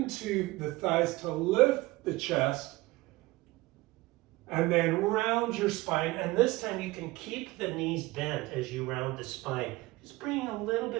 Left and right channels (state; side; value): quieter; left; 20.4 dB